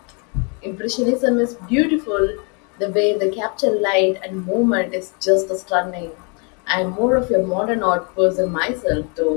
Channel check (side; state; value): right; quieter; 35.1 dB